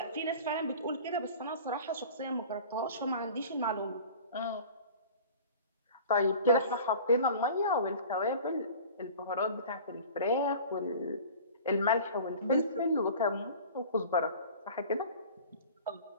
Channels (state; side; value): inverted; both; correlation -0.42